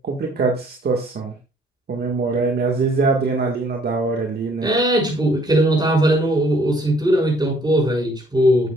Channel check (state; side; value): normal; both; correlation 0.62